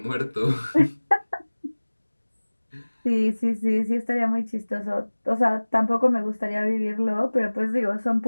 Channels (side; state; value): both; inverted; correlation -1.00